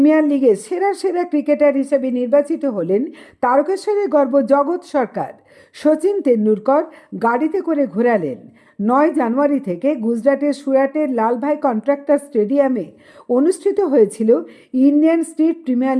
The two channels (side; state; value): both; identical; correlation 1.00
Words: লিগে সেরা সেরা ক্রিকেটার হিসেবে নির্বাচিত হলেন তারকেশ্বরের গর্ব জগৎ সরকার। সচিন তেন্ডুলকর গাড়িতে করে ঘোরালেন। 9 জানুয়ারি থেকে গুজরাটের সুরাটের লালভাই কন্ট্রাক্টর স্টেডিয়ামে অনুষ্ঠিত হয়েছিল Indian street premier